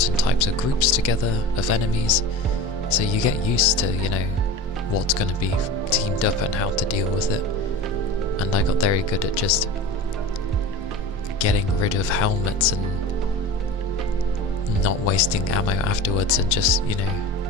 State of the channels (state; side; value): normal; both; correlation 0.33